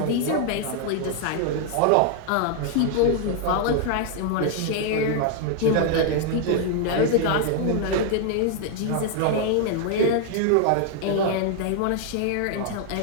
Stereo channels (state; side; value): different; both; correlation 0.00